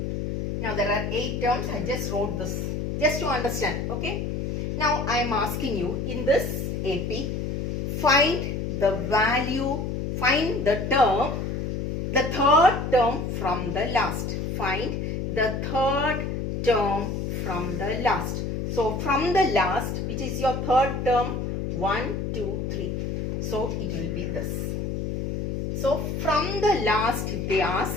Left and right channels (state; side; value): noise; left; hum, 2 dB below the sound